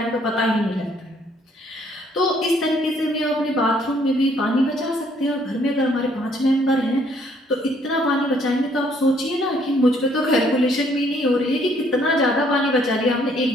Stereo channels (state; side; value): normal; both; correlation 0.65